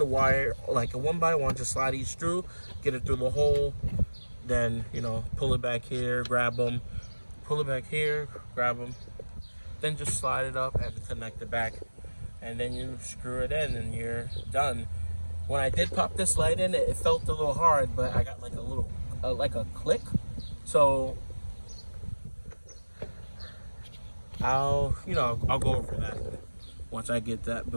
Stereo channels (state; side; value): inverted; both; correlation -1.00